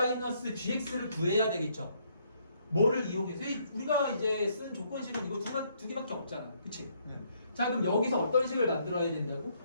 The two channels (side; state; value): both; inverted; correlation -0.70